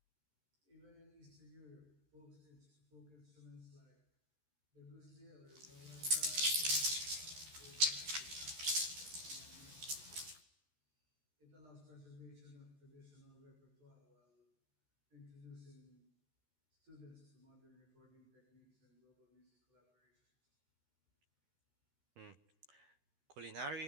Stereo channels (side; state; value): left; late; 13 ms